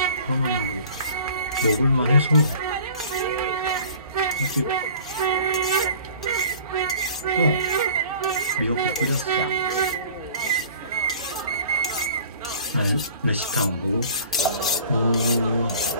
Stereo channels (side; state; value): both; inverted; correlation -0.47